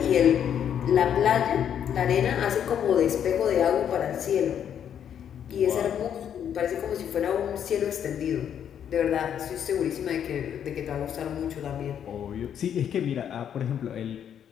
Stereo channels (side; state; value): right; quieter; 9.0 dB